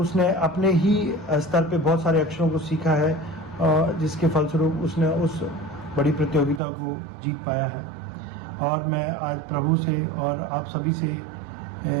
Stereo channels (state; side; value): drops out; left; at 6.6 s